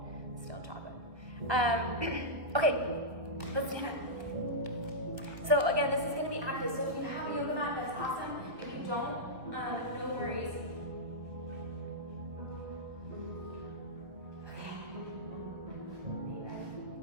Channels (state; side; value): late; left; 1.2 ms